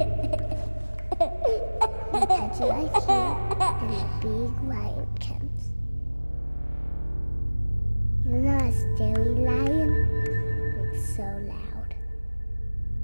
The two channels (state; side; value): inverted; both; correlation -1.00